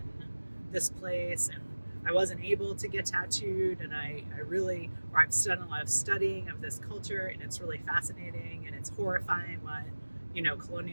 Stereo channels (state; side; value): inverted; both; correlation -1.00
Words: this place and I wasn't able to get tattooed, and I've done a lot of studying of this culture, and it's really fascinating, and it's horrifying what,